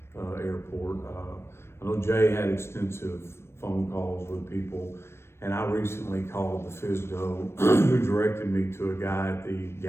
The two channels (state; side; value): late; right; 0.12 ms